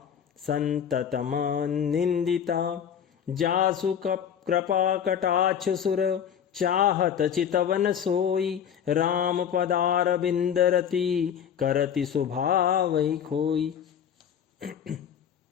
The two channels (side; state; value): right; quieter; 8.5 dB